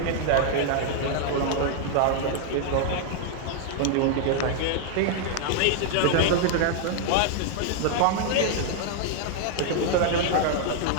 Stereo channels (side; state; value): both; different; correlation 0.00